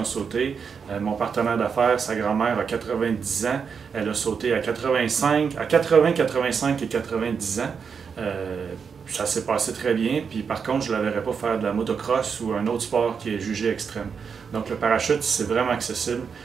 sauté. Mon partenaire d'affaires, sa grand-mère a 90 ans. Elle a sauté à 80, 85 et 90 ans. Ça s'est passé très bien. Puis par contre, je ne la verrais pas faire de la motocross ou un autre sport qui est jugé extrême. Donc le parachute, c'est vraiment accessible.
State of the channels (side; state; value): left; quieter; 6.2 dB